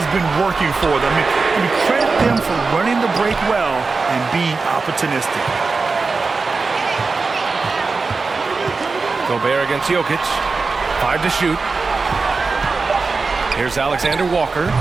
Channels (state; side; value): quieter; left; 4.2 dB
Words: been working for them. I mean, credit them for running the break well and being opportunistic. Gobert against Jokic. 5 to shoot. Here's Alexander Walker.